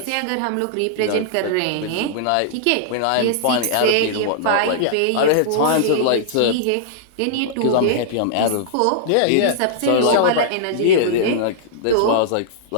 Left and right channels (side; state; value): both; different; correlation -0.01